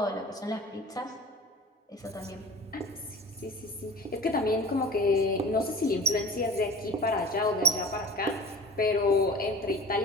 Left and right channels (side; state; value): both; normal; correlation 0.39